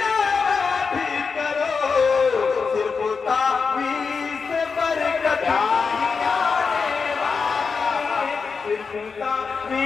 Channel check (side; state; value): right; quieter; 5.2 dB